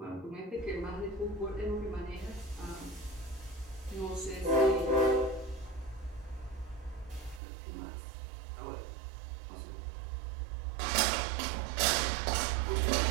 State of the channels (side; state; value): left; drops out; at 7.4 s